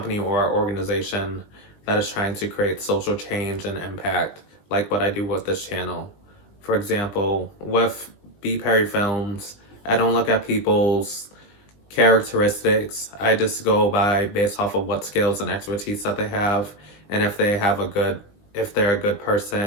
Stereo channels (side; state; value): right; late; 20 ms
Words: or organization that is trying to create social change and impact, like what I do with this channel. For example, with BPerryFilms, I don't look at people's characteristics. I just go by based off of what skills and expertise that they have, and if they're a good